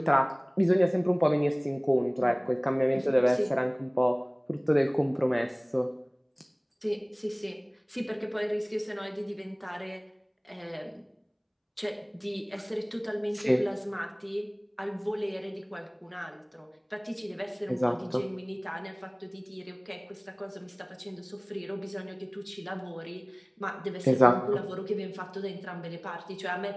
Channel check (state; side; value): identical; both; correlation 1.00